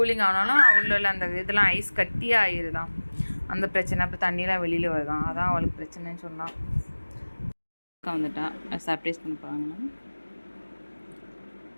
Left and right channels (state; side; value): inverted; both; correlation -1.00